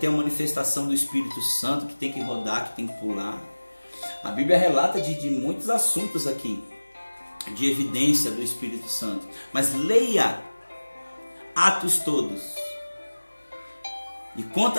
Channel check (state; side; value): inverted; both; correlation -1.00